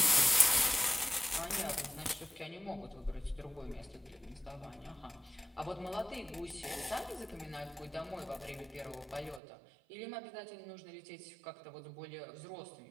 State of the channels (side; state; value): left; drops out; at 9.4 s